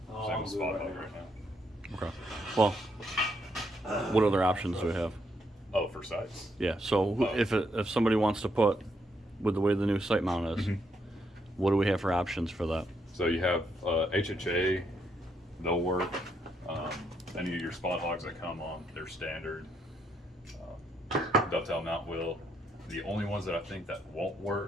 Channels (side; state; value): both; normal; correlation 0.76